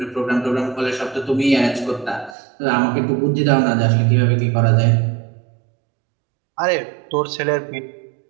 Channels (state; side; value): drops out; left; at 2.4 s